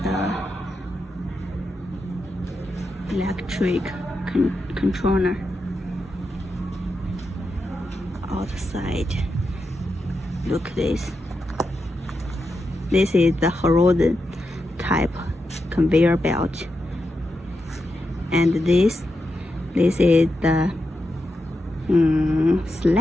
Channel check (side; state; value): both; normal; correlation 0.87